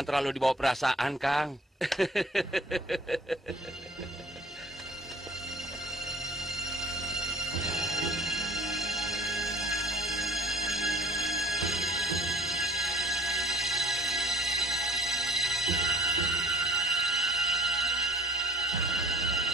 terlalu dibawa perasaan, Kang.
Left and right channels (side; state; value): both; normal; correlation 0.50